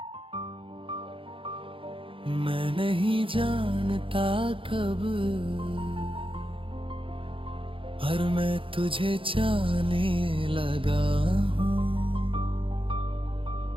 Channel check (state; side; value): late; left; 0.25 ms